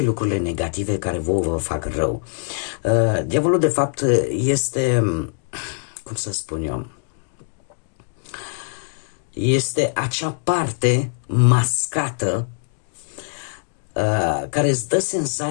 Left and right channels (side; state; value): right; silent; 64 dB below the other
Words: lucrurile negative care vă fac rău. Diavolul, de fapt, este, cum să spun eu, este acea parte mascată care îți dă